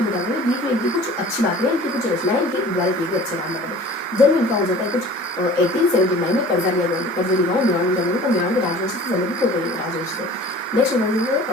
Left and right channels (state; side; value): normal; both; correlation 0.44